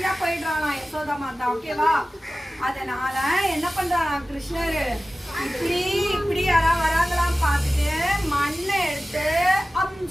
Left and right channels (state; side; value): normal; both; correlation 0.96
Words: போயிடுறாளாம் யசோதா மாதா. ஓகேவா? அதனால என்ன பண்றாளாம் கிருஷ்ணர் இப்படி இப்படி யாராவது வராங்களாம் பார்த்துட்டு மண்ணை எடுத்து